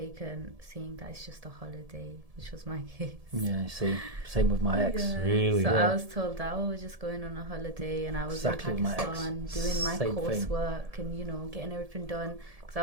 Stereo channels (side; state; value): left; late; 1.7 ms